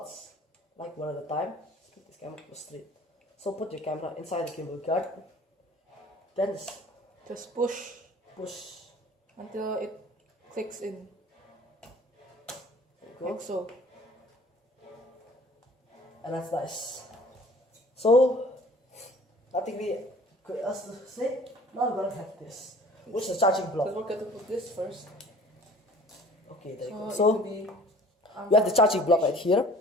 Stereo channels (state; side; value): normal; both; correlation 0.49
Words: like one at a time. Let's keep this camera straight. So put your camera inside the gimbal guard. Then Just push push until it clicks in. Like so. and that's nice. So nothing really good else to say. Now we're gonna have this, which is a charging block. But we're going to put this first. Okay, there you go. it So will be, you have the charging block right here,